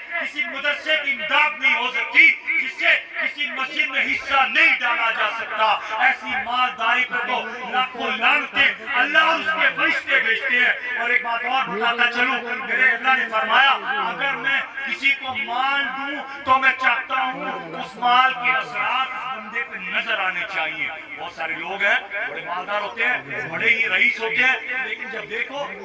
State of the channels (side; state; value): both; identical; correlation 1.00